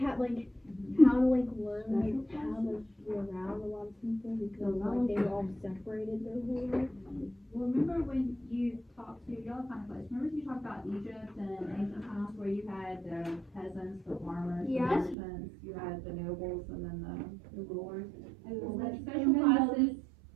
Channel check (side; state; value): left; drops out; at 15.2 s